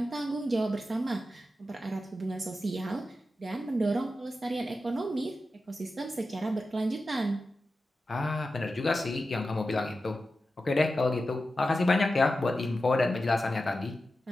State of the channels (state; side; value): normal; both; correlation 0.92